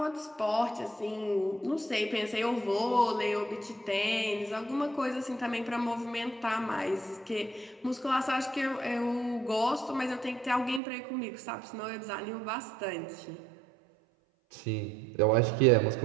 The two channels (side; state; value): left; drops out; at 10.8 s